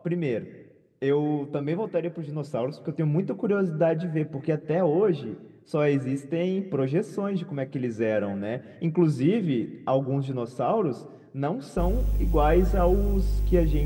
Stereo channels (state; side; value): identical; both; correlation 1.00